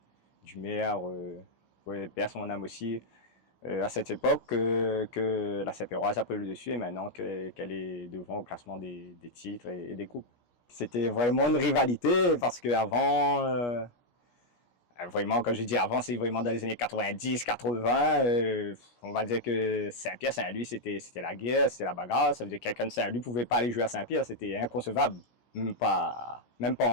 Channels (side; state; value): right; late; 17 ms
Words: maire, pour perdre son âme aussi, à cette époque, que la Saint-Péroise a pris le dessus et maintenant qu'elle est devant au classement des titres et des coupes. C'était vraiment une rivalité parce qu'avant, vraiment, quand je dis avant, c'est vraiment dans les années 90, 80. On va dire que Saint-Pierre, Saint-Louis, c'était la guerre, c'était la bagarre. Ça veut dire que quelqu'un de Saint-Louis ne pouvait pas aller jouer à Saint-Pierre. C'était inconcevable. Même pas